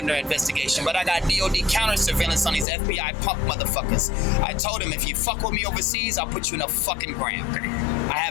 investigation. But I got DOD counter surveillance on these FBI punk motherfuckers. I told him, if you fuck with me overseas, I'll put you in a fucking ground. I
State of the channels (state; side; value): drops out; right; at 2.7 s